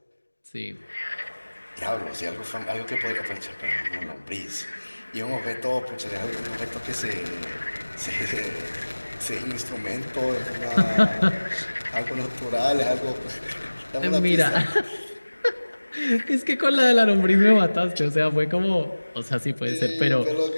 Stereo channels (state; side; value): inverted; both; correlation -1.00